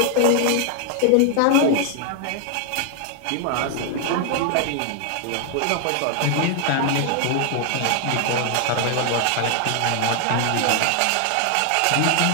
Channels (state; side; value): different; both; correlation 0.00